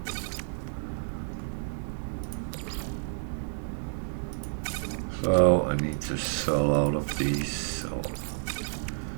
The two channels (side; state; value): left; silent; digital silence